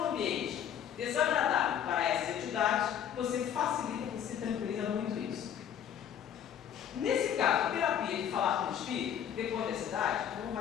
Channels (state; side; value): quieter; right; 9.2 dB